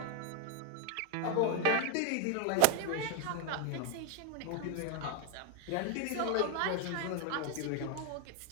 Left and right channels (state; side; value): different; both; correlation 0.01